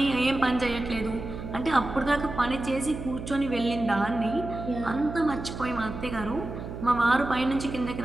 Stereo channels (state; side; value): noise; right; hum, 9 dB below the sound